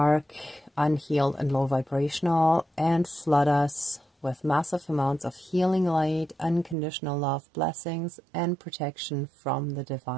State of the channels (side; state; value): left; drops out; at 6.8 s